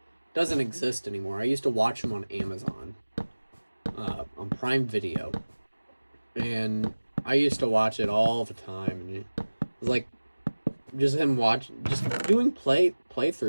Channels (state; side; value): inverted; both; correlation -1.00